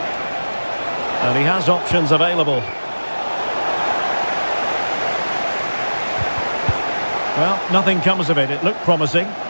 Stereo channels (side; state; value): both; inverted; correlation -1.00